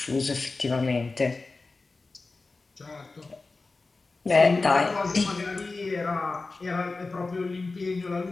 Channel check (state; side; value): quieter; right; 3.7 dB